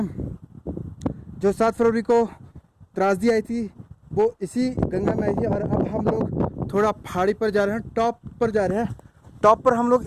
जो 7 फरवरी को त्रासदी आई थी वो इसी गंगा में आई थी। और अब हम लोग थोड़ा पहाड़ी पर जा रहे हैं, टॉप पर जा रहे हैं। टॉप पर हम लोग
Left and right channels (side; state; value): both; identical; correlation 1.00